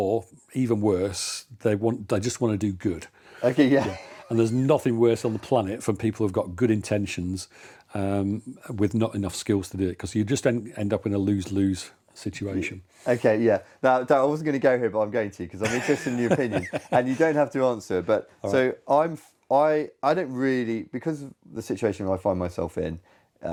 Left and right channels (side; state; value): both; identical; correlation 1.00